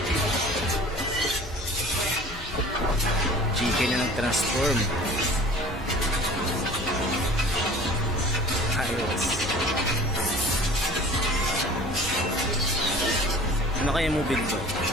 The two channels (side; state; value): both; normal; correlation 0.44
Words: Chicken na nag-transform. Ayos. Ano kaya mo build to?